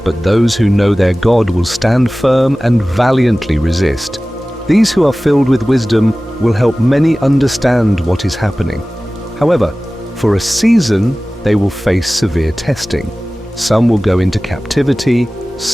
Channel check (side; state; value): both; normal; correlation 0.97